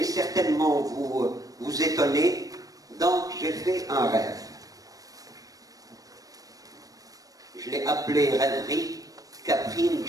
certainement vous étonner. Donc, j'ai fait un rêve. Je l'ai appelé Rêverie Caprine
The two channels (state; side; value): late; left; 0.17 ms